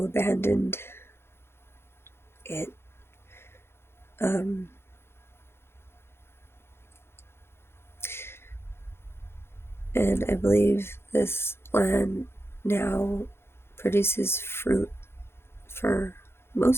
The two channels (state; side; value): late; right; 0.12 ms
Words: abandoned it. And I believe this land now produces fruit for